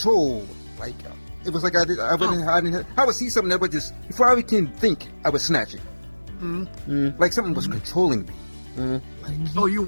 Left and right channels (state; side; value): inverted; both; correlation -1.00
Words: Like it was like I would see something that would just before I can think, I would snatch it. Like something was controlling me. Oh,